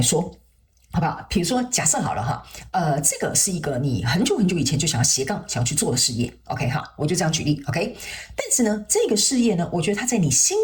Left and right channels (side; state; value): both; identical; correlation 1.00